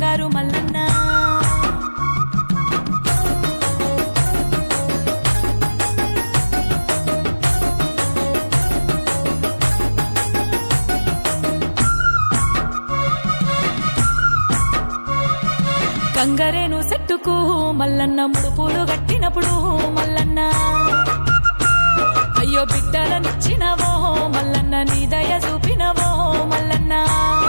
మల్లన్న గంగరేను చెట్టుకు మల్లన్న ముడుపులు గట్టినప్పుడు మల్లన్న అయ్యో బిడ్డలనిచ్చినవో మల్లన్న నీ దయ చూపినవో మల్లన్న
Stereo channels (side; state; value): both; inverted; correlation -1.00